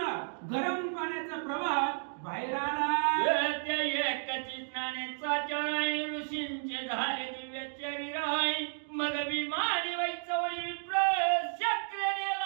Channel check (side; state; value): left; silent; digital silence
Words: गरम पाण्याचा प्रवाह बाहेर आला. त्या एकची स्नानेचा चराय ऋषींचे झाले दिव्य शरीराय. मग विमानी वैचवळी विप्र शक्र